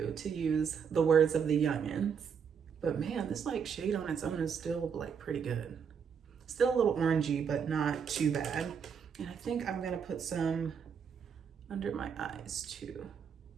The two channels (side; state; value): left; quieter; 6.8 dB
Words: use the words of the youngins. But man, this like shade on its own is still like pretty good. Still a little orangey, but not too bad. And I think I'm gonna put some under my eyes too.